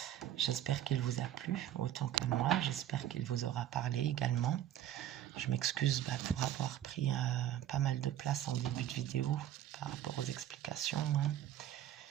J'espère qu'il vous a plu autant qu'à moi. J'espère qu'il vous aura parlé également. Je m'excuse pour avoir pris pas mal de place en début de vidéo par rapport aux explications.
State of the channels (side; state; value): left; quieter; 11.7 dB